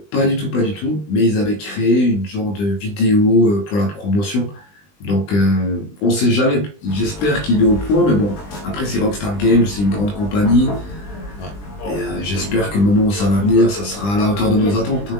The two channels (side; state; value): right; late; 20 ms